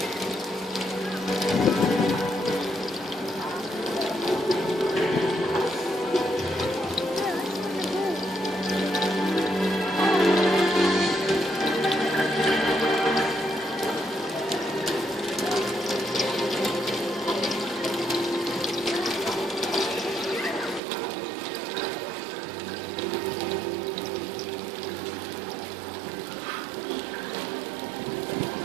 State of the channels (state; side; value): drops out; left; at 20.8 s